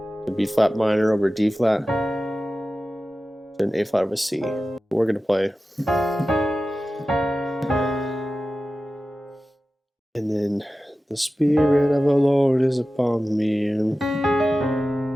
B flat minor over D flat, and an A flat over C. We're going to play, and then the Spirit of the Lord is upon me. And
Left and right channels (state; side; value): normal; both; correlation 0.94